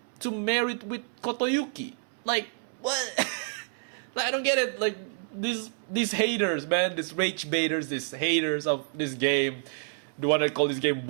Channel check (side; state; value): left; silent; 59 dB below the other